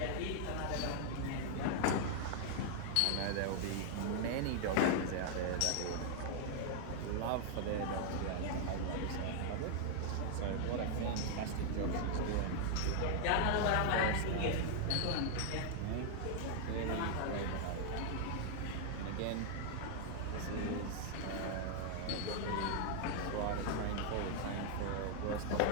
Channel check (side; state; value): both; different; correlation 0.00